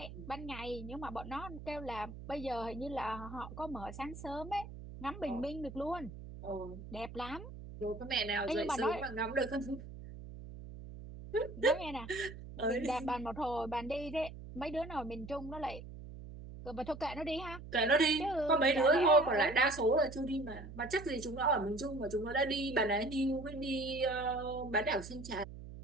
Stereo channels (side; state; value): right; noise; hum, 12 dB below the sound